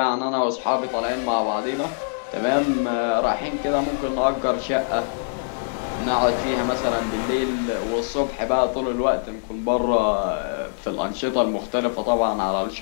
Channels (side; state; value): right; silent; digital silence